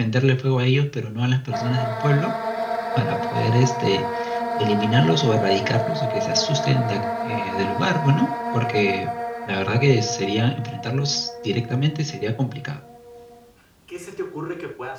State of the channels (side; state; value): both; identical; correlation 1.00